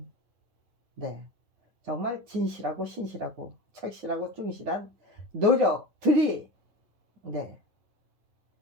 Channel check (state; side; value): late; left; 9.7 ms